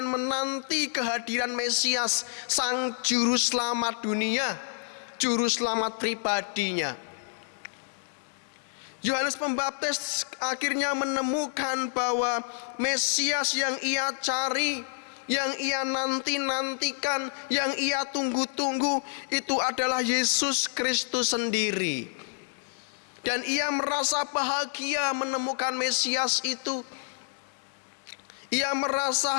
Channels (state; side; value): silent; right; digital silence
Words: menanti kehadiran Mesias, sang juru selamat dunia, juru selamat pribadinya. Yohanes Pembaptis akhirnya menemukan bahwa Mesias yang ia cari, yang ia nantikan, yang ia tunggu-tunggu, itu adalah Yesus Kristus sendiri. Dan ia merasa bahagia menemukan Mesias itu. Ia merasa